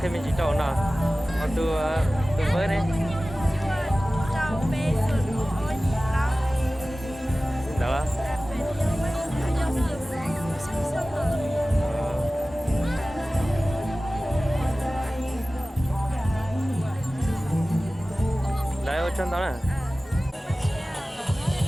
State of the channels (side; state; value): both; normal; correlation 0.97